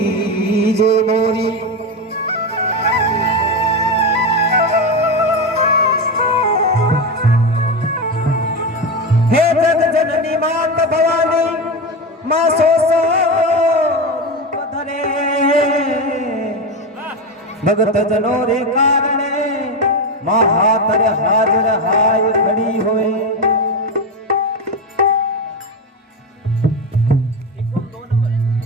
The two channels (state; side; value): normal; both; correlation 0.16